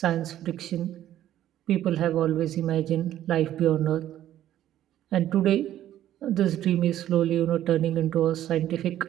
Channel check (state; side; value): quieter; left; 12.3 dB